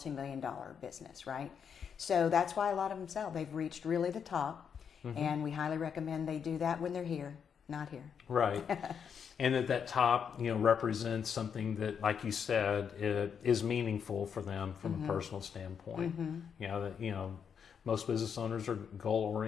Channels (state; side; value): quieter; right; 7.2 dB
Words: business, right? So that's why a lot of them sell. They've reached really the top, and we highly recommend they do that when they're here, not here. Right. And that top, represents something that, like you said, is meaningful for them from a personal standpoint. Most business owners are